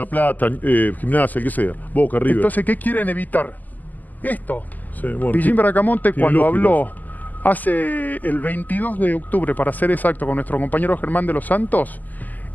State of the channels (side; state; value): right; late; 0.083 ms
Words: Plata, Gimnasia, el que sea. Boca, River. Entonces, ¿qué quieren evitar? Esto. Sí, bueno, Pillín Bracamonte, cuando habló hace el 22 de octubre, para ser exacto, con nuestro compañero Germán de los Santos,